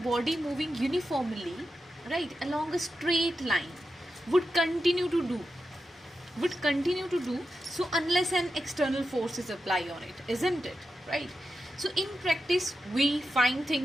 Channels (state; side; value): normal; both; correlation 0.89